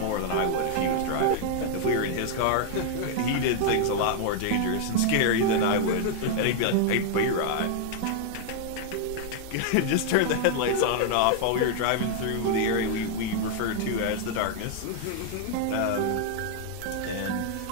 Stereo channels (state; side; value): different; both; correlation 0.00